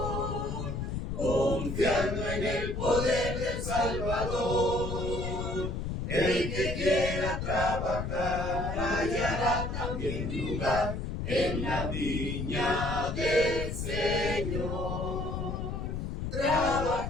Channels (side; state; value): left; noise; rumble, 3 dB below the sound